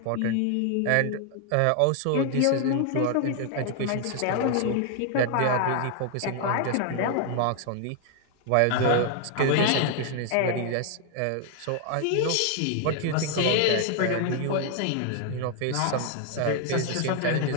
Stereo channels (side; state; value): both; different; correlation 0.00